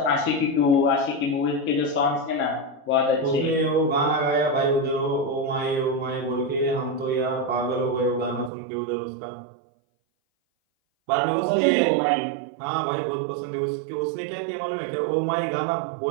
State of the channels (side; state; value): left; drops out; at 8.5 s